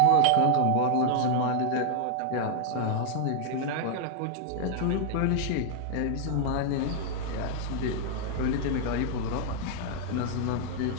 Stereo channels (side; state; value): both; different; correlation 0.00